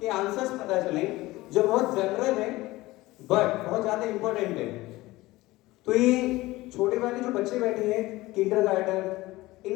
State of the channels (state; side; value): quieter; right; 19.0 dB